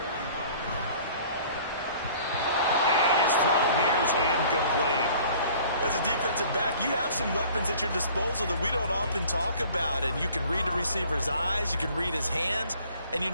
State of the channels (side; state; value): both; inverted; correlation -0.51